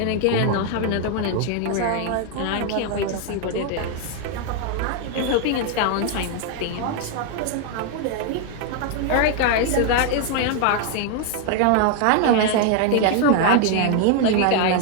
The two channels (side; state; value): both; different; correlation 0.00